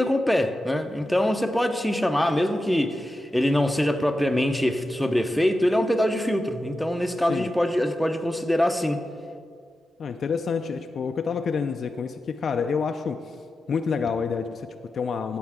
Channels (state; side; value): normal; both; correlation 0.91